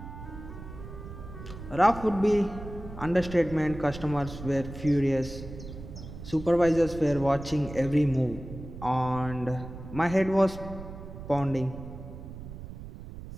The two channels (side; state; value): right; noise; rumble, 12 dB below the sound